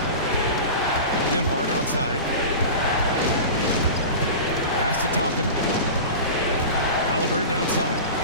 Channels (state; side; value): inverted; both; correlation -0.31